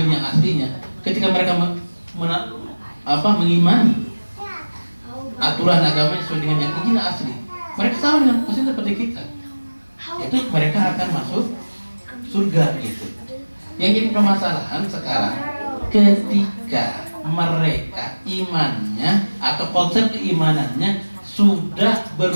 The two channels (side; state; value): both; inverted; correlation -1.00